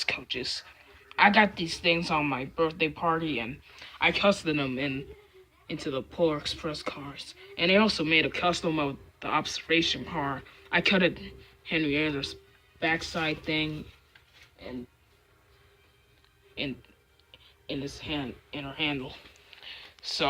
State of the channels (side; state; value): both; identical; correlation 1.00